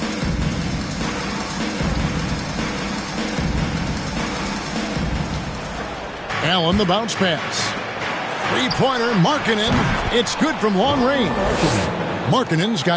Allen the bounce pass. Three-pointer, Markkanen. It's good from long range. Markkanen's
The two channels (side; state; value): both; identical; correlation 1.00